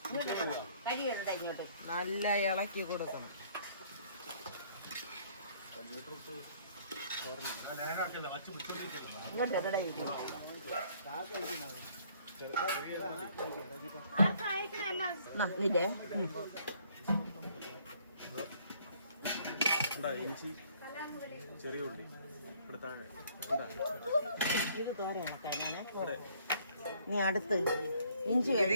കരിയുടെ ഇങ്ങോട്ട് നല്ല ഇളക്കി കൊടുക്കണം. ഇങ്ങോട്ട് എവിടെ ഇരിക്കും? ഇല്ലേ ചെറിയ ഉള്ളി ഇത് തോരയാണ് കഴിഞ്ഞാണ്. നീ അടുത്ത് ഇഞ്ചി. ഇത്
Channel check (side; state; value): both; inverted; correlation -0.61